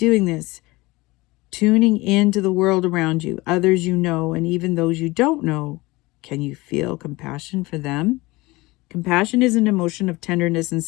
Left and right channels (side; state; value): right; quieter; 21.8 dB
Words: this. Tuning into the world around you, others you know, and even those you don't know. Can you feel compassion for them? Compassion is an emotion of tenderness and